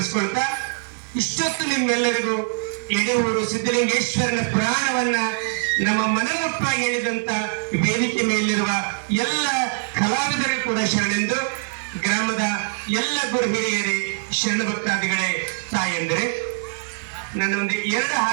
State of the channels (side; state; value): left; silent; digital silence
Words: ಇಷ್ಟೊತ್ತು ನಿಮ್ಮೆಲ್ಲರಿಗೂ ಯಡೂರು ಸಿದ್ಧಲಿಂಗೇಶ್ವರನ ಪುರಾಣವನ್ನ ನಮ್ಮ ಮನಮುಟ್ಟಾಗಿ ಹೇಳಿದಂತ ವೇದಿಕೆ ಮೇಲಿರುವ ಎಲ್ಲ ಕಲಾವಿದರು ಕೂಡ ಶರಣೆಂದು, ಗ್ರಾಮದ ಎಲ್ಲ ಗುರು ಹಿರಿಯರೇ, ಶರಣ ಭಕ್ತಾದಿಗಳೇ, ತಾಯಂದ್ರೆ ನಾನು ಒಂದು 2